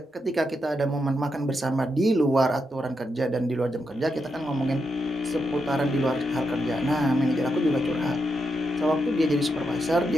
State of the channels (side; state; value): both; normal; correlation 0.84